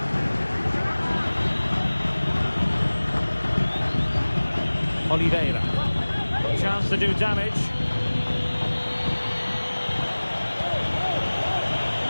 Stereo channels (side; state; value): both; inverted; correlation -1.00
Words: Oliveira. Chance to do damage.